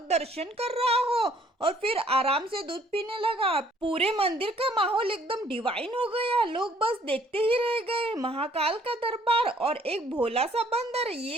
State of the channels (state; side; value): normal; both; correlation 0.61